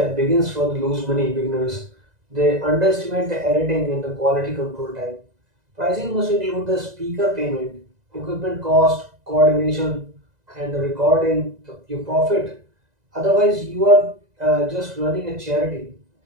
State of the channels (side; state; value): left; late; 2.0 ms